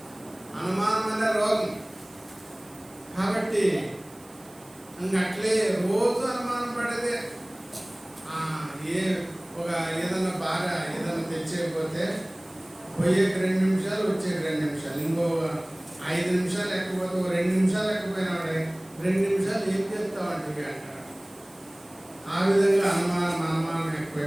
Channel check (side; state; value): right; noise; hiss, 24 dB below the sound